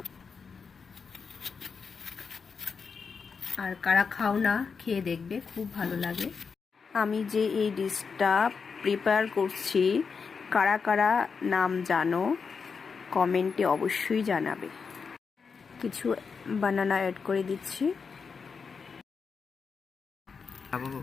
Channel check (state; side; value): quieter; right; 5.5 dB